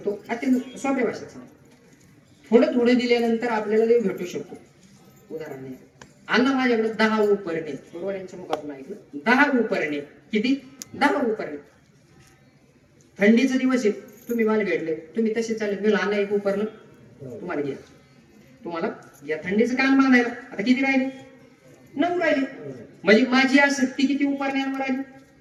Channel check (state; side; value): identical; both; correlation 1.00